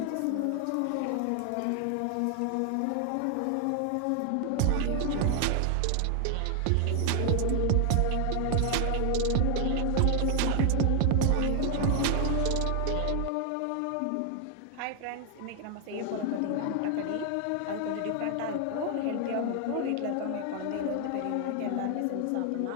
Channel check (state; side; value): different; both; correlation 0.00